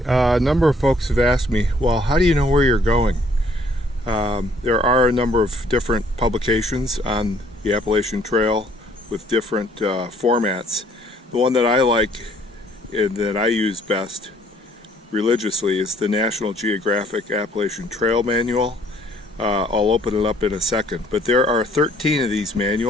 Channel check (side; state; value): both; normal; correlation 0.62